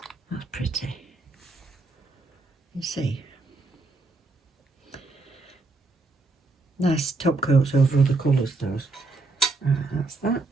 That's pretty. You see. Nice top coats over other colours, those. That's that.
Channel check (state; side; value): quieter; left; 3.4 dB